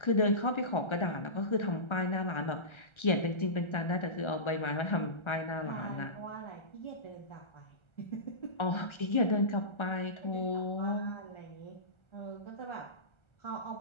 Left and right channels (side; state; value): right; late; 1.3 ms